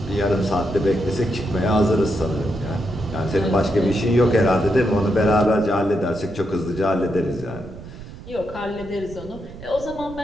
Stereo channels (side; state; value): right; noise; rumble, 15 dB below the sound